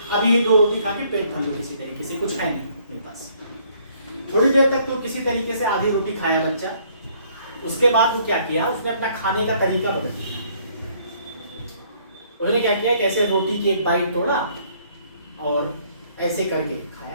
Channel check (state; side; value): inverted; both; correlation -0.63